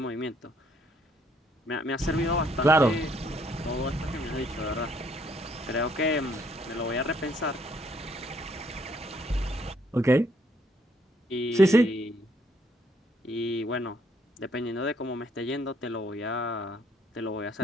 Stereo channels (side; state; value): both; normal; correlation 0.67